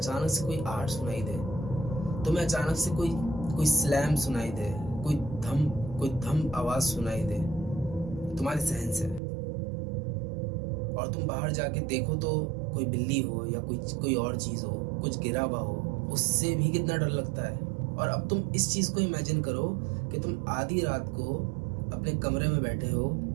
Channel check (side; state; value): left; drops out; at 9.2 s